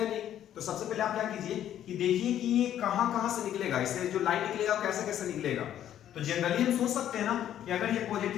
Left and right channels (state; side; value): quieter; right; 11.0 dB